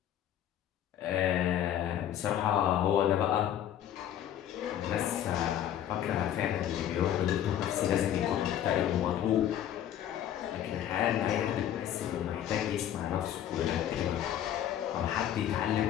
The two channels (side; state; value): right; quieter; 10.8 dB